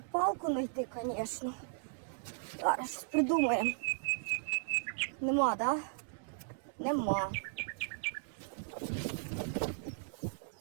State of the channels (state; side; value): silent; left; digital silence